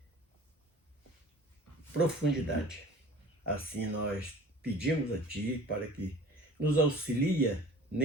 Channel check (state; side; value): normal; both; correlation 0.44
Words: profundidade. Assim nós pedimos a Ti para que nos auxilie